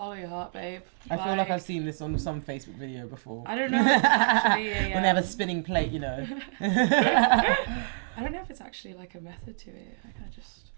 your heart, babe. I feel like I've seen this on some Facebook video before. I don't know. If it's actually, When they have a spinning plate, you know. I don't know if it's actually like a method to it. I kind of just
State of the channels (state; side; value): silent; left; digital silence